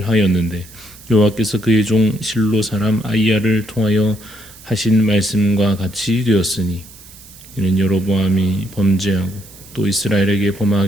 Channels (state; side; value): noise; right; hiss, 21 dB below the sound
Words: 여호와께서 그의 종 실로 사람 아히야를 통하여 하신 말씀과 같이 되었으니 이는 여로보암이 범죄하고 또 이스라엘에게